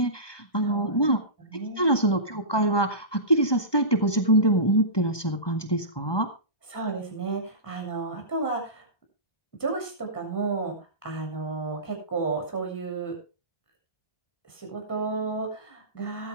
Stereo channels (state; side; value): late; right; 1.2 ms